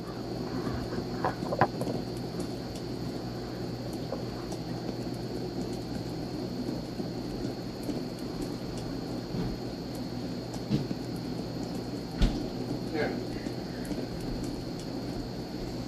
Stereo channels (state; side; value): identical; both; correlation 1.00